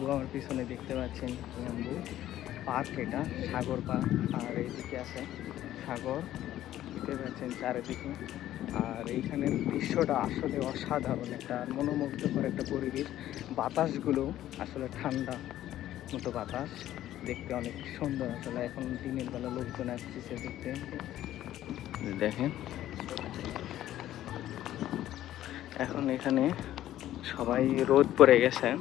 আমার পিছনে দেখতে পাচ্ছেন ইয়াম্বু পার্ক, এটা সাগর পার্ক। আর এইদিকে আছে সাগর, দেখতে পাচ্ছেন চারিদিকে। আর এইখানের দৃশ্যটা আসলে অসাধারণ, একটা মনোমুগ্ধকর একটা পরিবেশ। বাতাসগুলো আসলে ঠান্ডা মতো বাতাস, দেখতে অনেক সুন্দর। আসলে এখন দিনের বেলা লোকজন আসতেছে দেখতে। দেখেন এখন এখানে সবাই রোদ পড়ে গেছে,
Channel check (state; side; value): quieter; right; 13.1 dB